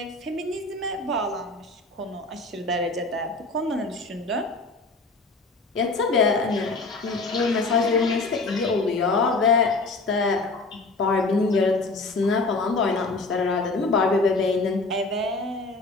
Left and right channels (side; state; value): right; quieter; 3.4 dB